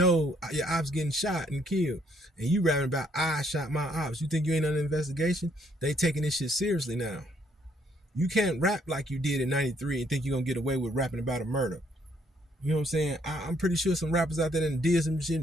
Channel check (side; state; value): both; normal; correlation 0.68